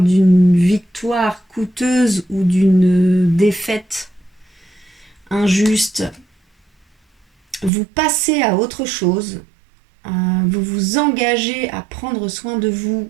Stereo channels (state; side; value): drops out; left; at 7.7 s